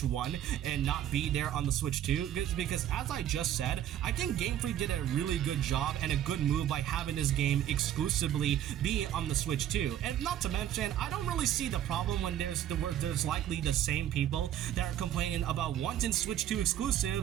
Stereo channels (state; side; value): quieter; left; 11.3 dB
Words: 1 and not be there on the Switch 2? Because as I just said, I think Game Freak did a really good job and a good move by having this game exclusively be on the Switch 2. And not to mention, I don't really see the problem when there's likely the same people that are complaining about wanting Switch 2